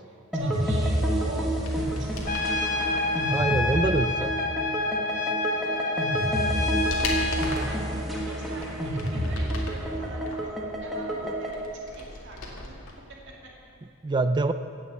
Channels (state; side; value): normal; both; correlation 0.42